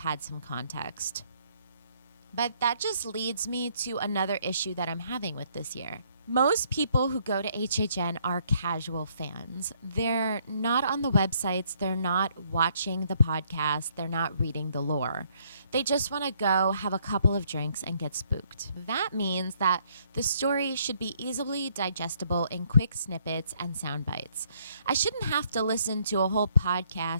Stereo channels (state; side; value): inverted; both; correlation -0.68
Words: some context. But that just leads me to another issue that I'm having with this year. Most people who go to HHN are casual fans. They're not on the websites, they're not watching the podcast, they're not reading the lore. They just want to go have a couple of drinks and get spooked. That means that the story should be easily digestible in quick snippets and sound bites. I shouldn't have to listen to a whole